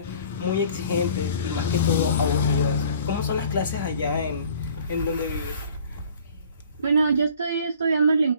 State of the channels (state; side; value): inverted; both; correlation -0.51